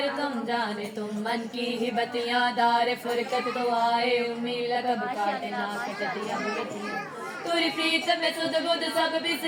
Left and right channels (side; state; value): both; identical; correlation 1.00